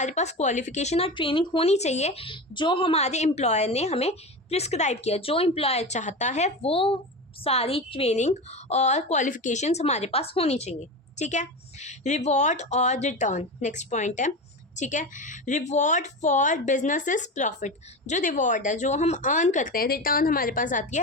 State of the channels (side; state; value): both; normal; correlation 0.24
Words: पास क्वालिफिकेशन और ट्रेनिंग होनी चाहिए जो हमारे एम्प्लॉयर ने हमें प्रिस्क्राइब किया. जो एम्प्लॉयर चाहता है वो सारी ट्रेनिंग और क्वालिफिकेशंस हमारे पास होनी चाहिए. ठीक है. रिवॉर्ड और रिटर्न नेक्स्ट पॉइंट है. ठीक है. Reward for business is profit. जो रिवॉर्ड है, जो हम अर्न करते हैं, रिटर्न हमारे पास आती